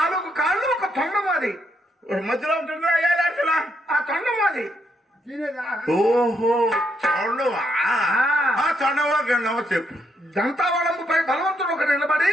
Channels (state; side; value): normal; both; correlation 0.76